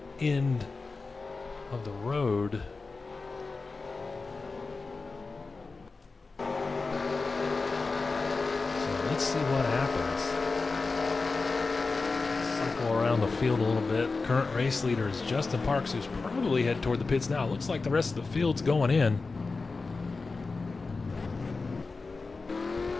end of the road. So let's see what happens. Cycle around the field a little bit. Current race leader is Justin Parks, who's probably headed toward the pits now. Looks like the rest of the field's going in.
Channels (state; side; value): quieter; right; 4.0 dB